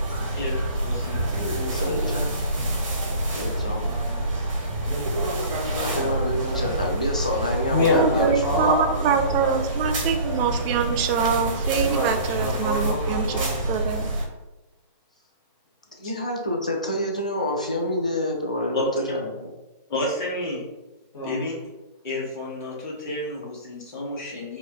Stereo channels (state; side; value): inverted; both; correlation -0.41